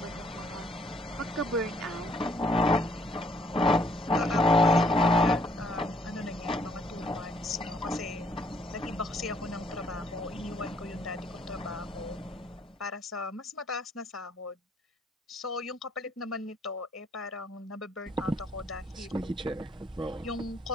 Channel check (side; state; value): both; normal; correlation 0.66